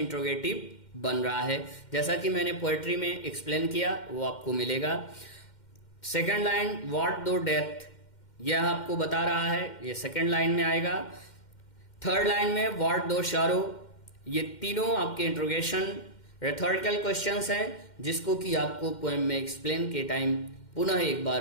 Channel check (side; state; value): right; late; 2.1 ms